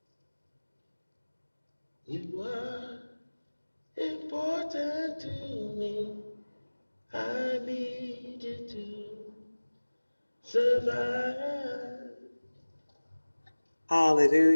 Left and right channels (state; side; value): inverted; both; correlation -1.00